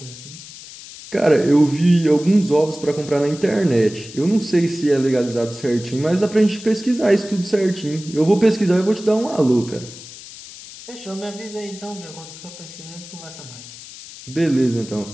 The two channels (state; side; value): noise; left; hiss, 16 dB below the sound